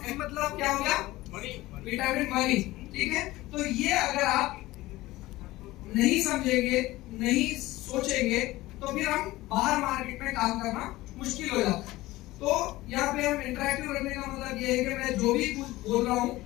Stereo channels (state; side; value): quieter; right; 18.2 dB